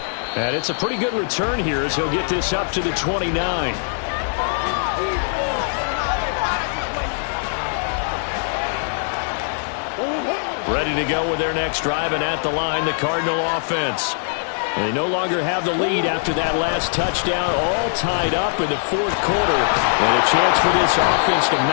And it's a pretty good return here as he'll get this up to the 29. Ready to go with their next drive, and at the line, the Cardinal offense. They no longer have the lead after that last touchdown, all tied up in the fourth quarter. And a chance for this offense to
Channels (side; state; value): right; silent; digital silence